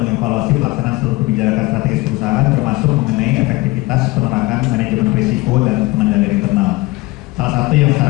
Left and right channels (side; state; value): right; quieter; 21.7 dB